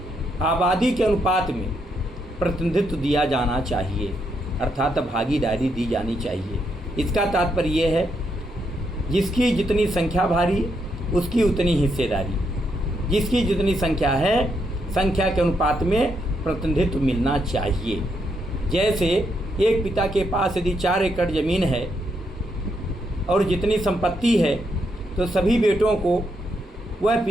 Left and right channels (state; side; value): normal; both; correlation 0.78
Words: आबादी के अनुपात में प्रतिनिधित्व दिया जाना चाहिए, अर्थात भागीदारी दी जानी चाहिए। इसका तात्पर्य ये है, जिसकी जितनी संख्या भारी उसकी उतनी हिस्सेदारी, जिसकी जितनी संख्या है संख्या के अनुपात में प्रतिनिधित्व मिलना चाहिए। जैसे एक पिता के पास यदि 4 एकड़ ज़मीन है और जितनी संपत्ति है, तो सभी बेटों को वह